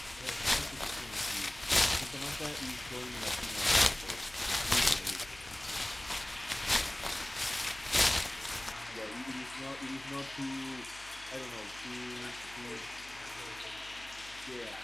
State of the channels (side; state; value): left; noise; hum, 21 dB below the sound